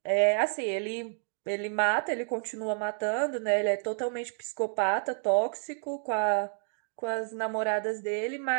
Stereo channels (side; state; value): left; silent; digital silence